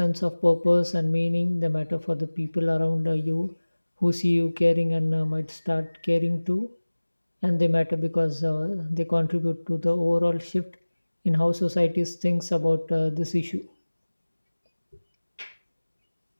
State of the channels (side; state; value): both; inverted; correlation -1.00